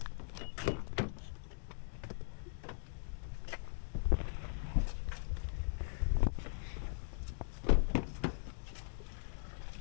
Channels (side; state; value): right; silent; digital silence